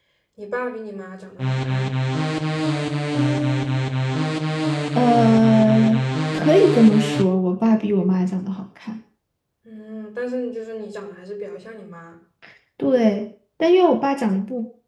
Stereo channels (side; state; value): both; identical; correlation 1.00